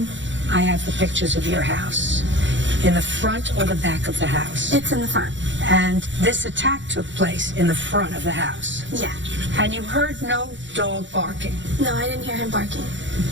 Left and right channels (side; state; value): left; late; 0.54 ms